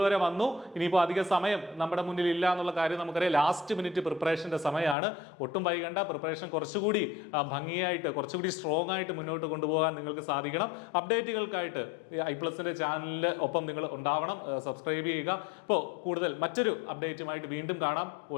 വരെ വന്നു. ഇനിയിപ്പോൾ അധിക സമയം നമ്മുടെ മുന്നിൽ ഇല്ല എന്നുള്ള കാര്യം നമുക്കറിയാം. ലാസ്റ്റ് മിനിറ്റ് പ്രിപ്പറേഷന്റെ സമയമാണ്. ഒട്ടും വൈകണ്ട. പ്രിപ്പറേഷൻ കുറച്ചുകൂടി ഭംഗിയായിട്ട്, കുറച്ചുകൂടി സ്ട്രോങ് ആയിട്ട് മുന്നോട്ട് കൊണ്ടുപോകാൻ നിങ്ങൾക്ക് സാധിക്കണം. അപ്ഡേറ്റുകൾക്കായിട്ട് iPlusന്റെ ചാനലിന് ഒപ്പം നിങ്ങൾ ഉണ്ടാവണം. സബ്സ്ക്രൈബ് ചെയ്യുക. അപ്പോൾ കൂടുതൽ മറ്റൊരു അപ്ഡേറ്റുമായിട്ട് വീണ്ടും കാണാം.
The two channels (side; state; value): right; drops out; at 5.0 s